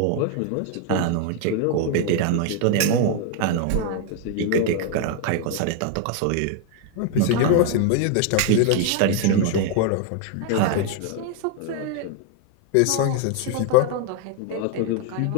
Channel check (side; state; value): both; different; correlation 0.00